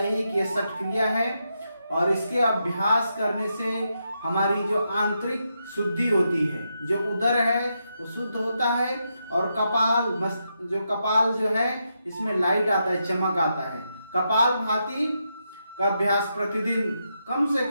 कि यह षट क्रिया है और इसके अभ्यास करने से हमारी जो आंतरिक शुद्धि होती है, जो उदर है वो शुद्ध होता है और कपाल जो है इसमें लाइट आता है, चमक आता है। कपालभाति का अभ्यास प्रतिदिन कम से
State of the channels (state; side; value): inverted; both; correlation -0.83